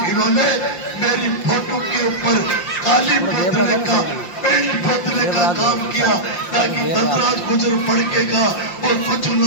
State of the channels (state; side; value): late; right; 5.7 ms